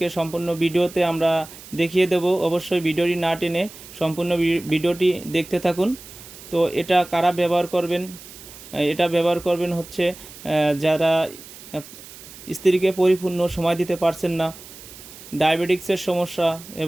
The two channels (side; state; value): right; noise; hiss, 17 dB below the sound